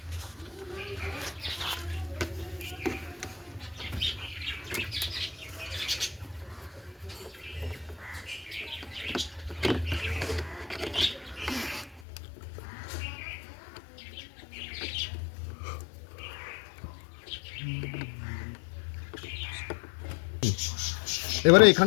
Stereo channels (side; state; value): right; drops out; at 12.0 s